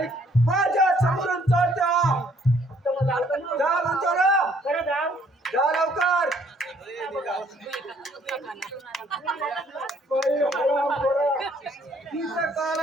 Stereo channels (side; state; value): both; normal; correlation 0.64